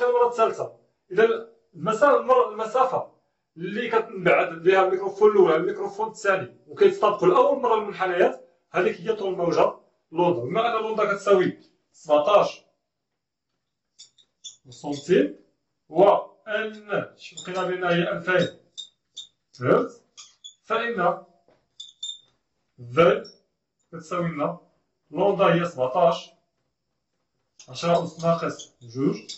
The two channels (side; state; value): both; identical; correlation 1.00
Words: المرة الثالثة. إذا المسافة اللي كتنبعد بها الميكروفون الأول على الميكروفون الثاني وكيتطابقوا لأول مرة المنحنيات، هذيك هي طول الموجة لوندا. بما أن لوندا كتساوي 17 سنتيم وأن لقينا بأنها هي 2000 هرتز، فإن Z كتساوي لنا لوندا هي 17 10 أس ناقص جوج